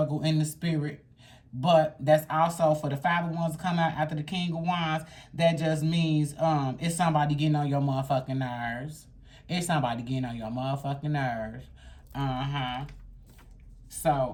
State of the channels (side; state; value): both; identical; correlation 1.00